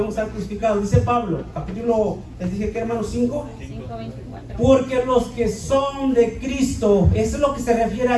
estar crucificados. Dice Pablo, capítulo, les dije que, hermanos, 5. 5:24. Porque los que son de Cristo, eso es lo que se refiere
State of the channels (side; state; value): both; identical; correlation 1.00